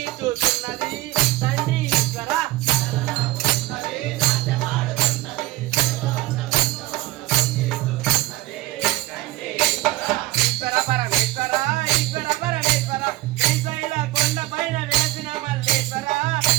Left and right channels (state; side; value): quieter; left; 17.6 dB